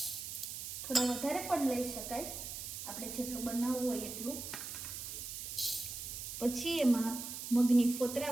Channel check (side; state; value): right; noise; hiss, 7 dB below the sound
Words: થોડા વધારે પણ લઈ શકાય, આપણે જેટલું બનાવવું હોય એટલું। પછી એમાં મગની